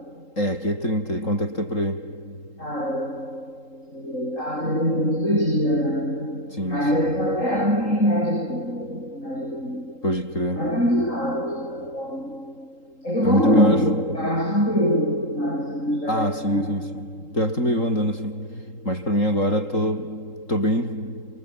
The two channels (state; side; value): late; right; 3.8 ms